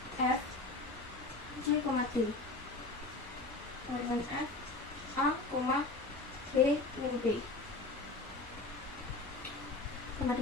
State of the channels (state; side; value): quieter; right; 3.3 dB